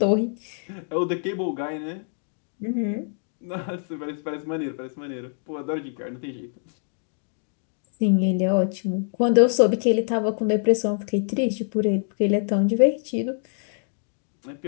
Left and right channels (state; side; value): silent; right; 60 dB below the other